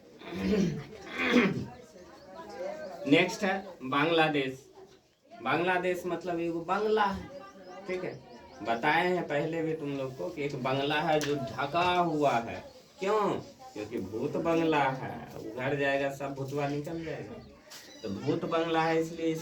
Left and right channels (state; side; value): identical; both; correlation 1.00